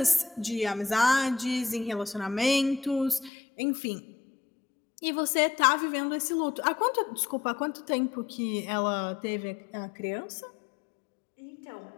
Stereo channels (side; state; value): right; drops out; at 3.3 s